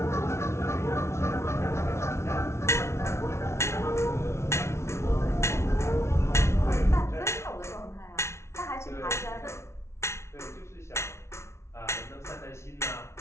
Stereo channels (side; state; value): right; late; 0.13 ms